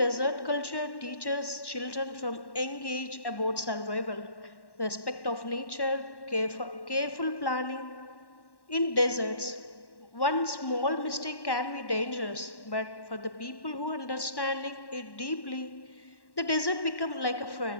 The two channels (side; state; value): right; late; 1.1 ms